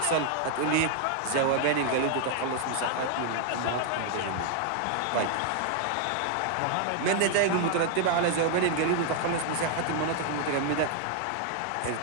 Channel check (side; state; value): both; different; correlation 0.00